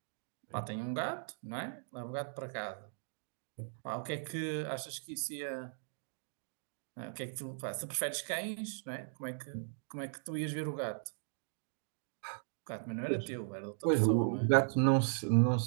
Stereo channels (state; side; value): silent; left; digital silence